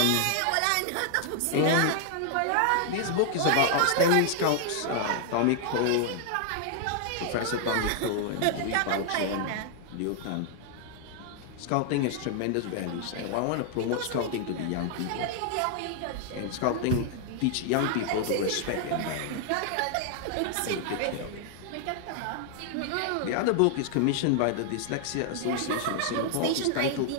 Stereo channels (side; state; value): both; different; correlation 0.00